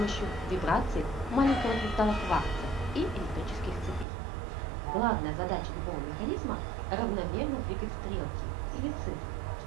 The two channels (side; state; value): left; drops out; at 4.0 s